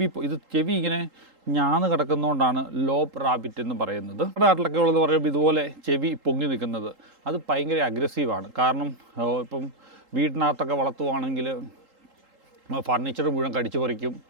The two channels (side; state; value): left; late; 3.8 ms